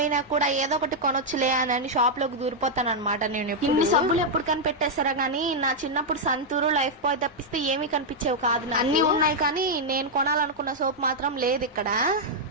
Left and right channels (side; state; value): both; normal; correlation -0.03